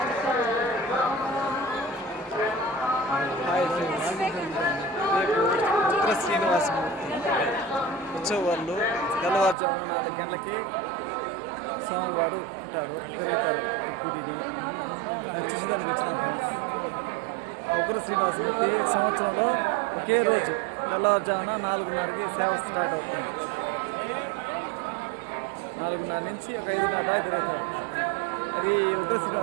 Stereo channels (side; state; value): left; drops out; at 9.6 s